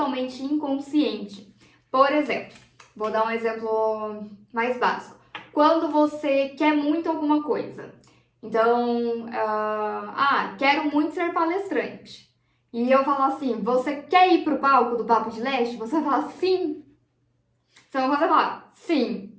inconsciente. Por exemplo, vou dar um exemplo mais básico. Quando você quer muito alguma coisa, então, quero muito ser palestrante. E eu falo assim, você quer ir pro palco do Papo de Leste? Você fala sim. Então você fala sim.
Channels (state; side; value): identical; both; correlation 1.00